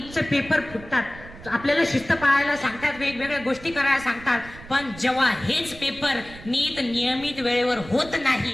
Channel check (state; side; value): noise; right; rumble, 17 dB below the sound